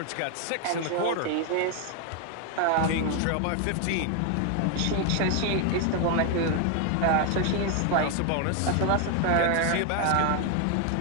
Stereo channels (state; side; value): different; both; correlation 0.01